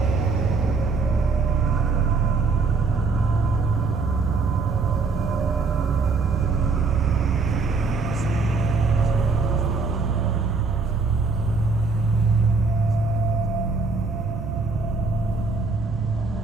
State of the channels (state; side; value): quieter; left; 4.2 dB